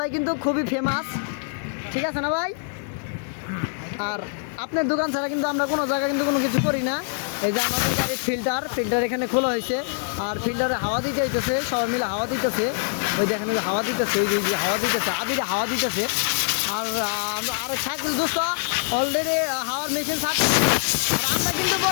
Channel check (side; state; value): right; silent; digital silence